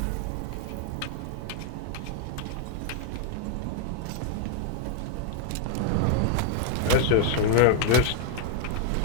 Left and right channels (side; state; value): both; different; correlation 0.00